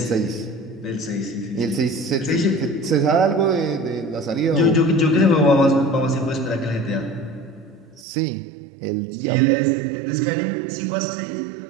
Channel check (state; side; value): drops out; left; at 8.1 s